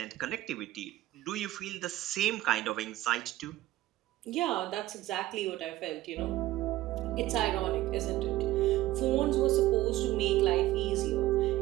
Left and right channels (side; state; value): left; quieter; 15.8 dB